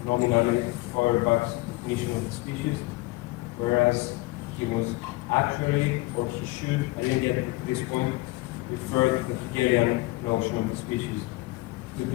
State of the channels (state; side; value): quieter; right; 21.5 dB